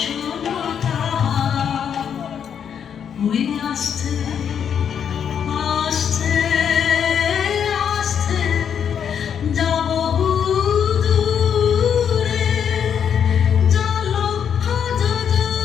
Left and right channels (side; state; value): right; quieter; 8.0 dB